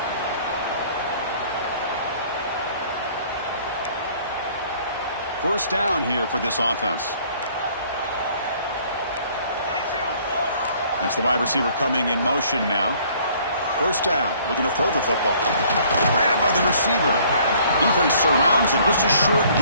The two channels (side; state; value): both; inverted; correlation -0.58